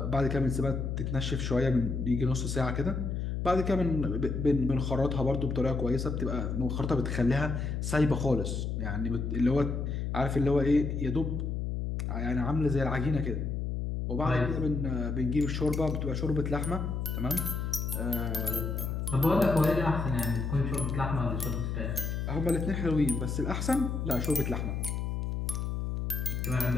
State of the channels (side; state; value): left; noise; hum, 2 dB below the sound